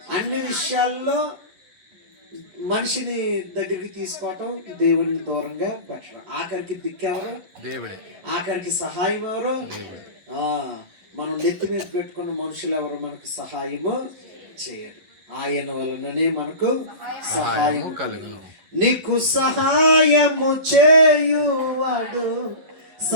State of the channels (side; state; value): left; late; 11 ms